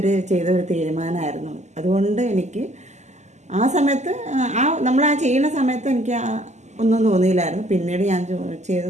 ചെയ്തൊരു തീരുമാനമായിരുന്നു. അതുകൊണ്ട് എനിക്ക് ആ സമയത്ത് നമ്മൾ ചെയ്യുന്ന സമയത്ത് എനിക്ക് ഒന്നും തോന്നിയില്ലായിരുന്നു. പിന്നീട് ഞാൻ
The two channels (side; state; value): left; late; 0.33 ms